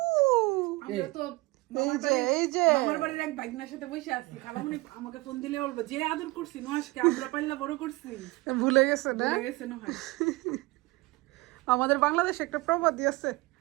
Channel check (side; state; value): left; quieter; 22.4 dB